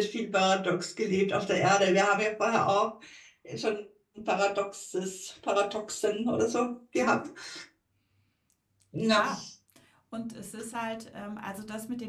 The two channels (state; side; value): identical; both; correlation 1.00